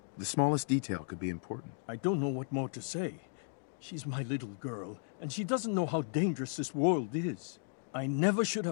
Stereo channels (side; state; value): right; silent; digital silence